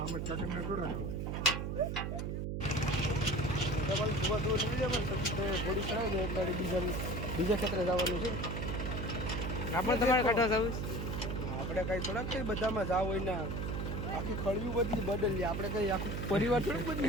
બીજા ક્ષેત્રે જવાનું છે. આપણે તમારે કાઢવા જવું. આપણે કઈ થોડાક કઈ બધામાં જાવ હોય ને આખી ખળિયું બદલી બદલીએ. આપણે કઈ આખું પરિવાર થોડુંક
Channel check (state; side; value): noise; right; hum, 2 dB below the sound